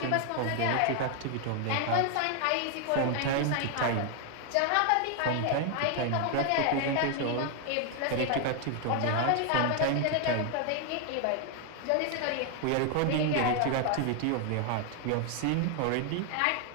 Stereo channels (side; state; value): both; different; correlation 0.00